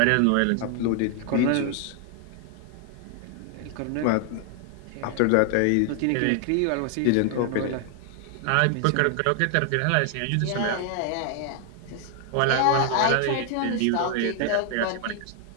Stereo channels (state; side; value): different; both; correlation 0.00